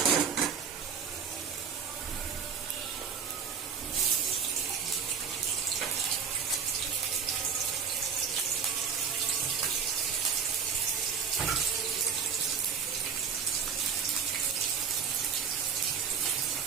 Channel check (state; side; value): quieter; left; 6.8 dB